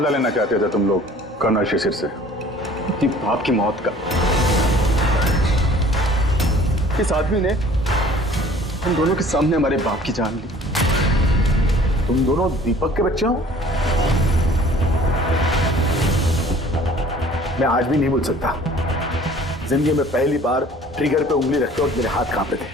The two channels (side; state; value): both; normal; correlation 0.51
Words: लेना चाहते थे तुम लोग कर्नल शिशिर से? बाप की मौत का। इस आदमी ने हम दोनों के सामने हमारे बाप की जान ली। तुम दोनों दीपक के बच्चे हो? मैं आज भी नहीं भूल सकता, जिंदगी में पहली बार ट्रिगर पे उंगली रखते वक्त मेरे हाथ कांपे थे,